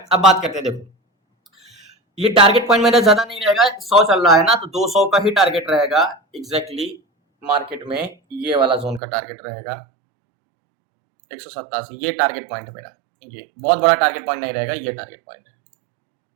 अब बात करते हैं, देखो ये टारगेट पॉइंट मेरा ज्यादा नहीं रहेगा, 100 चल रहा है ना, तो 200 का ही टारगेट रहेगा एग्जैक्टली मार्केट में, ये वाला जोन का टारगेट रहेगा 187, ये टारगेट पॉइंट है मेरा, ये बहुत बड़ा टारगेट पॉइंट नहीं रहेगा, ये टारगेट पॉइंट है।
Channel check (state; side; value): drops out; left; at 9.0 s